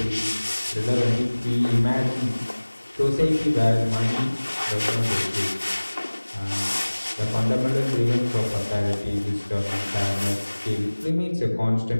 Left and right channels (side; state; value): both; inverted; correlation -1.00